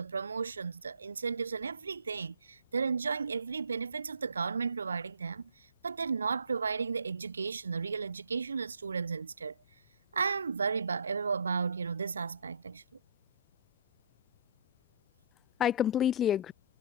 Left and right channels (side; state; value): both; inverted; correlation -0.49